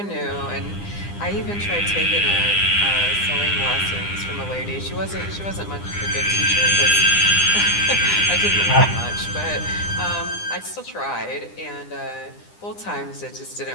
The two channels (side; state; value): right; late; 9.9 ms